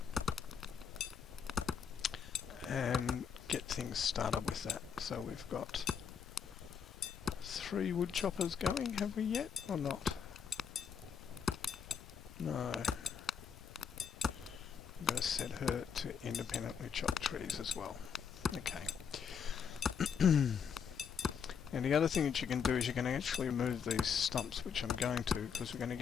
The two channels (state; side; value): quieter; right; 7.1 dB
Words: and get things started with that. So we've got 3 wood choppers going, have we yet, or not? No. I'm going to set her to independently chop trees as well. Okay. And the other thing that you can do is you can actually remove these stumps, which I'm going to, because we're going to